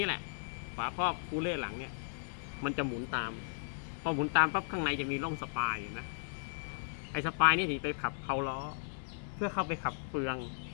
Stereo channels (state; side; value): silent; right; digital silence